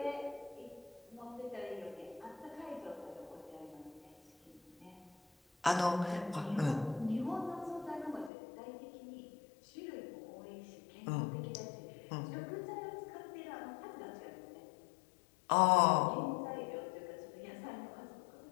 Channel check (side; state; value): right; drops out; at 8.3 s